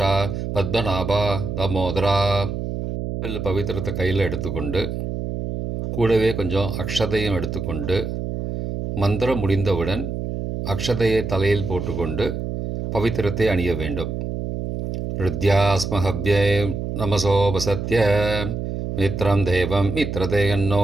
பத்மநாபா, தாமோதரா. பவித்திரத்தை கையில் எடுத்துக்கொண்டு கூடவே கொஞ்சம் அக்ஷதையும் எடுத்துக்கொண்டு மந்திரம் முடிந்தவுடன் அக்ஷதையை தலையில் போட்டுக்கொண்டு பவித்திரத்தை அணிய வேண்டும். ருத்யாஸ்மஹவ்யே நமசோபசத்ய மித்ரம் தேவம்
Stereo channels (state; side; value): noise; right; hum, 4 dB below the sound